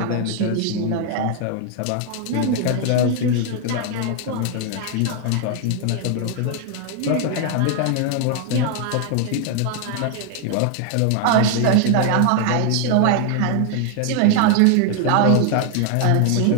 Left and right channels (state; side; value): different; both; correlation 0.00